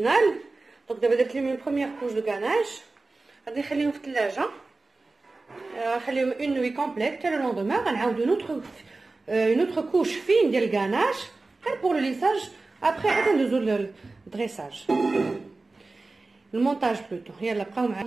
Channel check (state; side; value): quieter; left; 3.4 dB